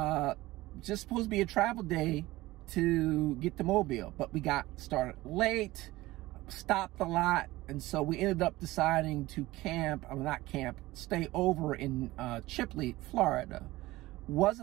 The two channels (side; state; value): left; quieter; 18.4 dB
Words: Just supposed to be a travel day to get to Mobile, but we got started late, stopped a lot, and so we ended up deciding to stay over in Chipley, Florida.